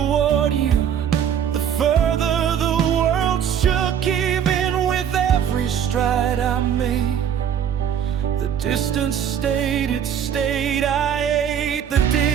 you, the further the world shook. Even with every stride I made, the distance stayed, it stayed. I ate the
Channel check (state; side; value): quieter; left; 8.8 dB